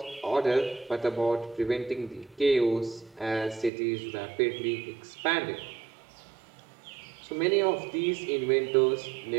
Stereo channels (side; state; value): left; drops out; at 3.7 s